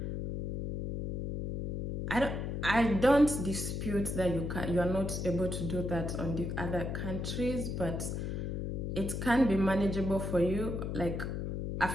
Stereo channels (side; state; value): left; noise; hum, 3 dB below the sound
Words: I don't dispute that you are not able to do that on the other countries, but it can be manageable for you, like a